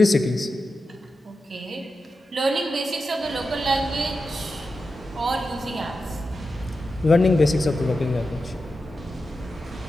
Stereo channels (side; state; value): both; normal; correlation 0.90